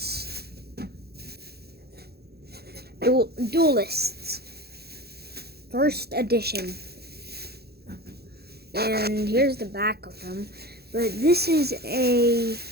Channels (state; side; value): late; left; 0.46 ms